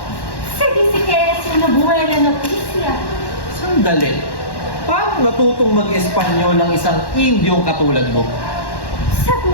Se dice que es una buena noticia. Sandali. Paano natutong mag-Espanyol ng isang Indyong katulad mo? Sa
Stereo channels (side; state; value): right; late; 1.1 ms